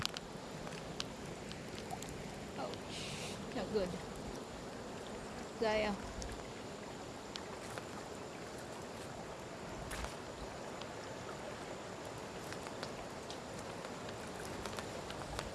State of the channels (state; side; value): identical; both; correlation 1.00